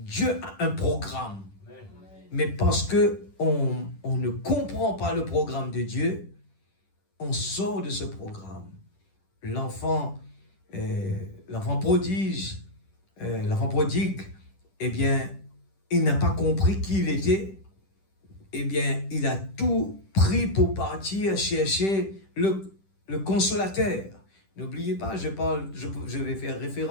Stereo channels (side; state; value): right; late; 10 ms